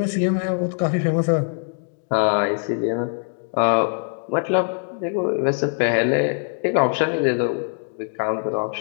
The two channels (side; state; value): right; silent; digital silence